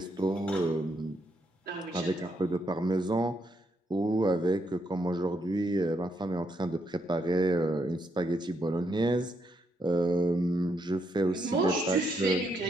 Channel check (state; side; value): normal; both; correlation 0.77